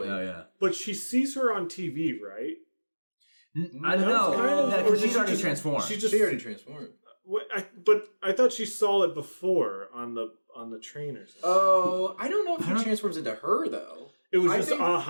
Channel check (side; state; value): both; inverted; correlation -1.00